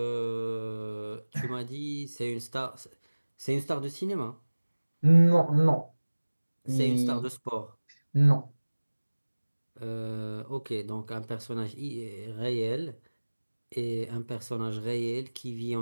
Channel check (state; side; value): inverted; both; correlation -1.00